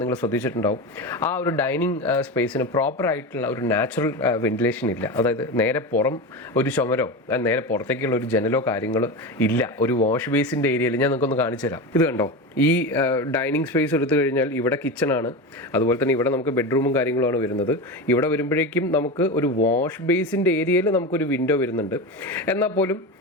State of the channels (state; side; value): normal; both; correlation 0.22